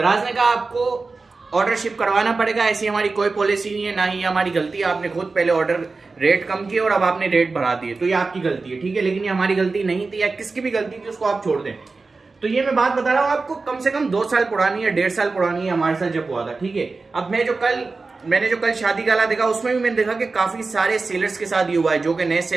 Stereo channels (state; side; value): quieter; left; 3.9 dB